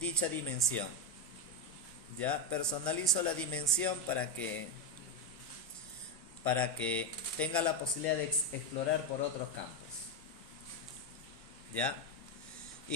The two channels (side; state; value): both; normal; correlation 0.08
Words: dimensión. Ya personalizo la dimensión para que tenga la posibilidad de explorar por otros campos. ¿Ya?